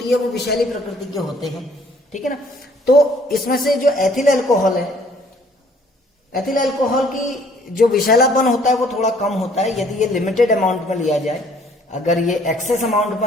है वो विषैली प्रकृति के होते हैं, ठीक है ना। तो इसमें से जो एथिल अल्कोहल है, एथिल अल्कोहल की जो विषैलापन होता है वो थोड़ा कम होता है यदि ये लिमिटेड अमाउंट में लिया जाए। अगर ये एक्सेस अमाउंट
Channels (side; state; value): both; normal; correlation 0.60